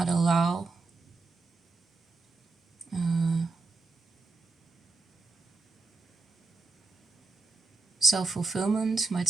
allow self-fulfillment, might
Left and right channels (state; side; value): quieter; left; 3.7 dB